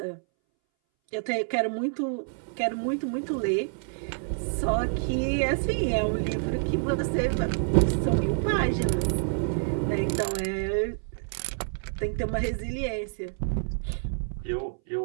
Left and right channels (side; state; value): left; silent; 59 dB below the other